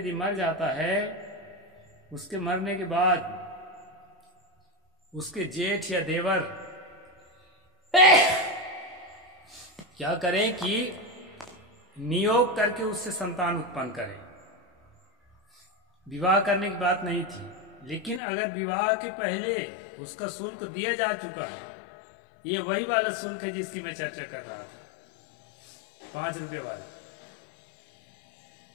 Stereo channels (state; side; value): drops out; right; at 18.2 s